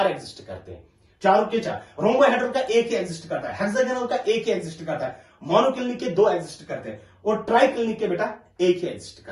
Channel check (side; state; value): both; identical; correlation 1.00